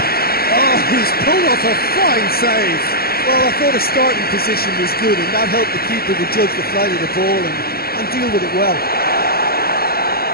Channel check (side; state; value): right; late; 0.44 ms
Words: Oh, he's pulled off a fine save. Well, I thought his starting position was good, and that helped the keeper to judge the flight of the ball and deal with it well.